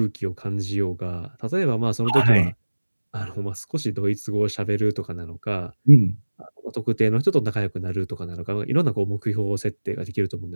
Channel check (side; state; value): both; inverted; correlation -1.00